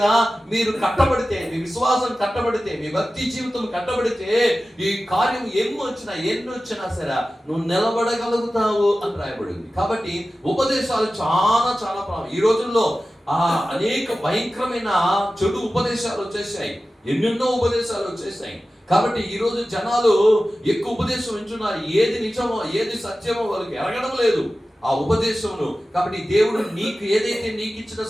మీరు కట్టబడితే, మీ విశ్వాసం కట్టబడితే, మీ భక్తి జీవితం కట్టబడితే, ఈ కార్యం ఎన్ని వచ్చినా సరే నువ్వు నిలబడగలుగుతావు అని రాయబడింది. కాబట్టి ఉపదేశాలు చాలా ఈ రోజుల్లో అనేక భయంకరమైన చెడు ఉపదేశాలు వచ్చేసాయి. ఎన్నెన్నో ఉపదేశాలు వచ్చేసాయి. కాబట్టి ఈ రోజు జనాలు ఎక్కువ ఉపదేశం వింటున్నారు. ఏది నిజమో ఏది సత్యమో వాళ్ళకి ఎరగడం లేదు ఆ ఉపదేశమును. కాబట్టి దేవుడు నీకు ఏదైతే నీకు ఇచ్చిన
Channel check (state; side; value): normal; both; correlation 0.95